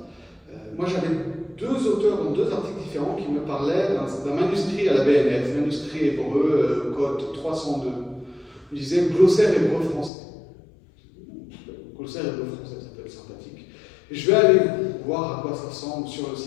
moi j'avais deux auteurs dans deux articles différents qui me parlaient d'un manuscrit à la BNF, manuscrit hébreu, code 302. Ils disaient glossaire hébreu-français. Glossaire hébreu-français, ça peut être sympathique. Et je vais aller voir à quoi ça ressemble sur le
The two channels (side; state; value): right; drops out; at 10.1 s